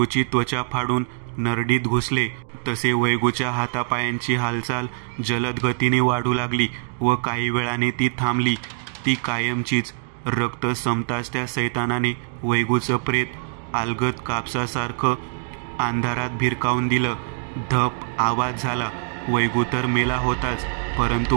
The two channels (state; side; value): silent; left; digital silence